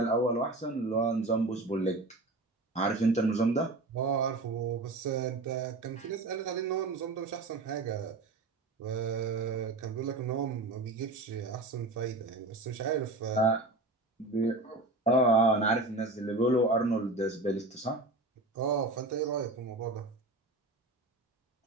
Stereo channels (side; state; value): left; quieter; 3.1 dB